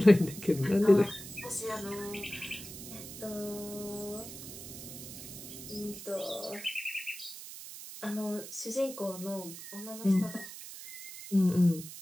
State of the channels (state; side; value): noise; right; hiss, 12 dB below the sound